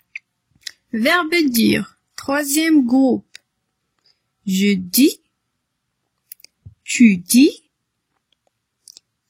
Verbe dire. Troisième groupe. Je dis. Tu dis.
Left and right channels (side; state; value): both; identical; correlation 1.00